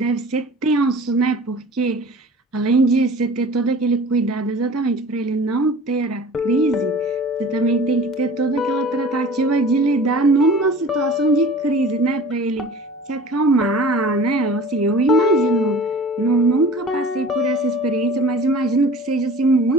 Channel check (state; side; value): normal; both; correlation 0.42